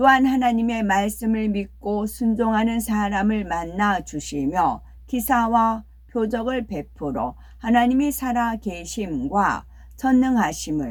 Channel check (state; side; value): identical; both; correlation 1.00